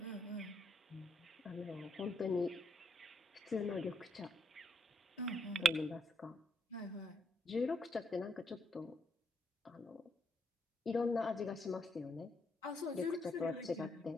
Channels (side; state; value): both; normal; correlation 0.74